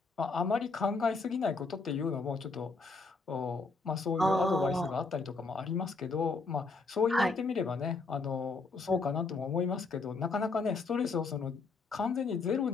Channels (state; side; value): quieter; right; 4.0 dB